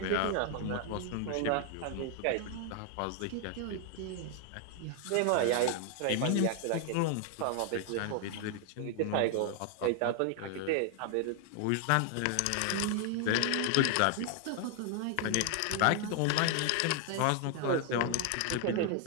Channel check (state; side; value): different; both; correlation 0.00